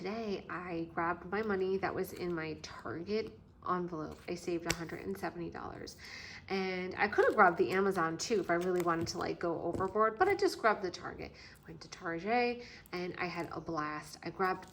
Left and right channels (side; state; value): both; identical; correlation 1.00